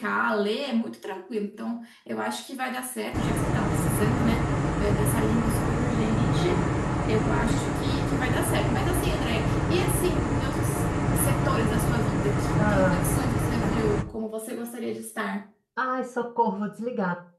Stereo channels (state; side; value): identical; both; correlation 1.00